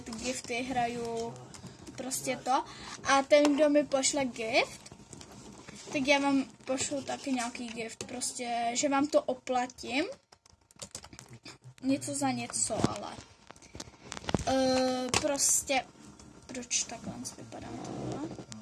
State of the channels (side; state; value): both; identical; correlation 1.00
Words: gifty, hraju prostě to. A ten, kdo mi pošle gift, tak já vám pošlu taky nějaký gift, prostě, že vám to oplatím. Něco za něco, ale. Prostě, proč takhle vypadám tohle?